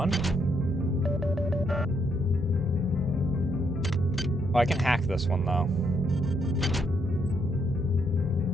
Oh, I can hack this one, though.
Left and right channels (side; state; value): both; normal; correlation 0.75